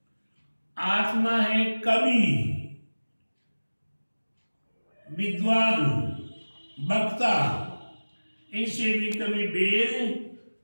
आत्मा है कवि, विद्वान, वक्ता, इनसे भी कभी बेर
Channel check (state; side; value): inverted; both; correlation -1.00